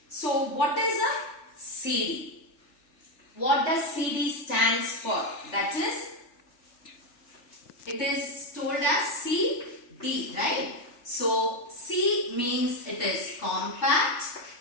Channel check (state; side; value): late; right; 3.4 ms